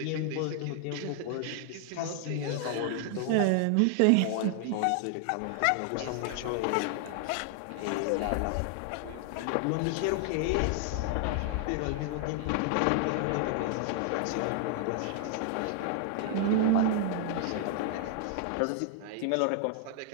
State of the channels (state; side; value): different; both; correlation 0.00